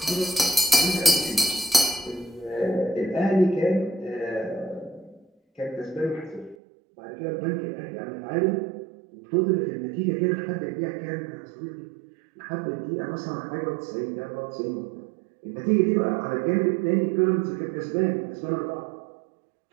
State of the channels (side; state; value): left; drops out; at 6.6 s